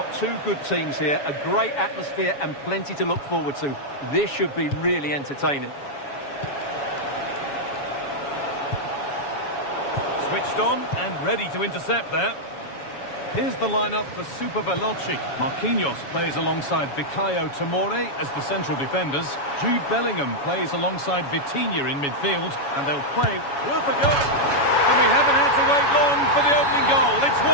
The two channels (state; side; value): late; right; 7.1 ms